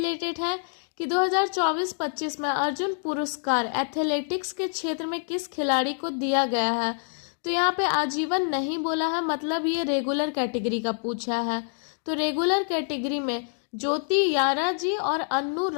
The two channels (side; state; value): right; silent; digital silence